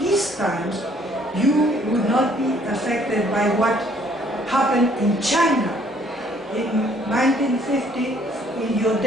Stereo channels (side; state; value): both; normal; correlation 0.62